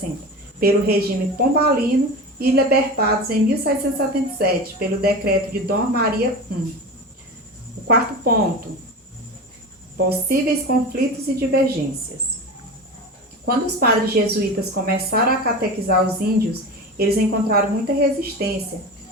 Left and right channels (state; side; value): normal; both; correlation 0.29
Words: pelo regime pombalino e libertados em 1777, pelo decreto de Dom Maria I. O quarto ponto: possíveis conflitos e divergências. Quando os padres jesuítas começaram a catequizar os índios, eles encontraram muita resistência,